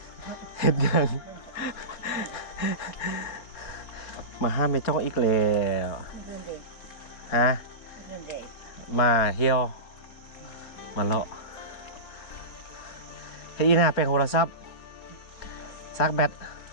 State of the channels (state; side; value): late; right; 4.1 ms